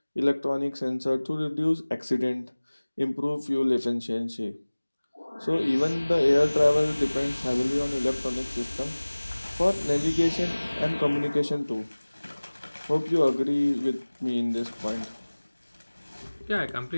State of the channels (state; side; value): inverted; both; correlation -1.00